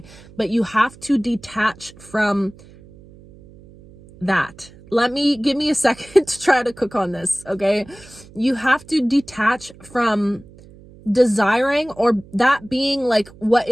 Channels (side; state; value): right; noise; hum, 22 dB below the sound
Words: But you have to detach from that. give me a second to try to cook on this, okay? You have to detach from desiring or that being like what